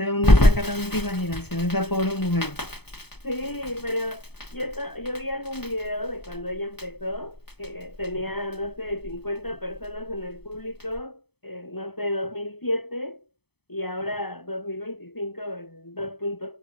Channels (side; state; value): right; late; 0.98 ms